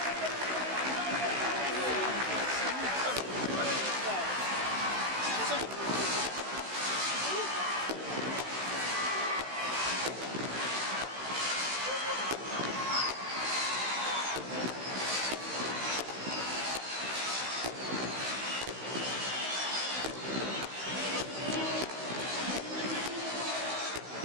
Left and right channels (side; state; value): left; late; 16 ms